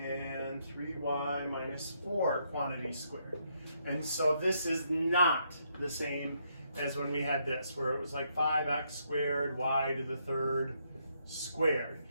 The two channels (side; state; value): both; inverted; correlation -0.75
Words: 3y minus 4 quantity squared. And so this is not the same as when we had this, where it was like 5x squared, y to the third squared.